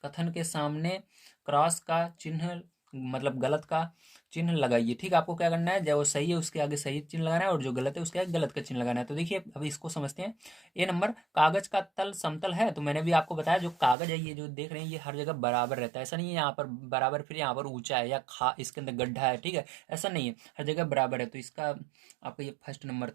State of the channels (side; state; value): left; drops out; at 14.0 s